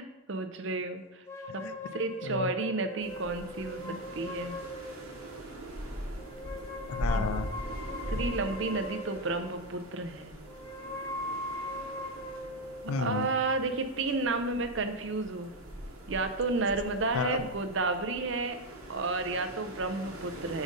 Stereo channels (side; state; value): both; normal; correlation 0.08